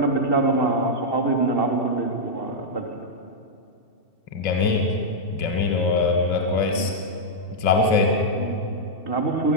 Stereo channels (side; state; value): right; late; 2.6 ms